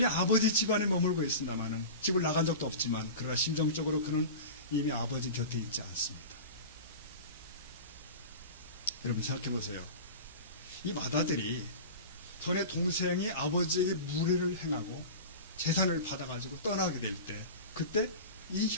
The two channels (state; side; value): inverted; both; correlation -0.32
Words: 아버지 집안에 머물고 있습니다만은, 집을 나간 적도 없지만, 그러나 심정적으로 그는 이미 아버지 곁에 있지 않습니다. 여러분, 생각해 보세요. 이 마다들이 전에 동생이 아버지에게 무례를 행하고 재산을 받아가지고 떠나게 될 때, 그때 이